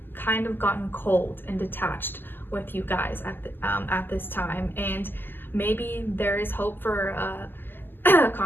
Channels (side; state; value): right; late; 0.094 ms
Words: kind of gotten cold and detached with you guys at this time, and maybe there is hope for a